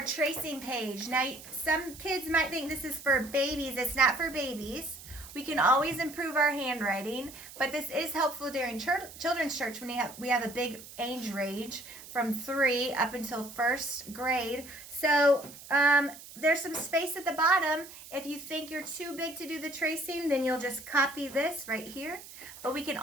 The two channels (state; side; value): noise; right; hiss, 16 dB below the sound